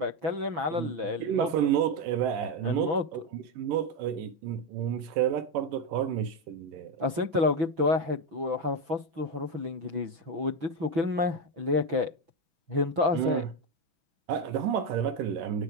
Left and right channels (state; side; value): late; left; 6.1 ms